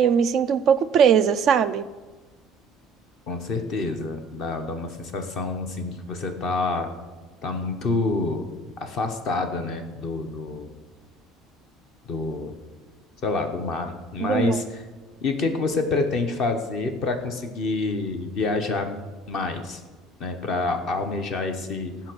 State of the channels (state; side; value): normal; both; correlation 0.49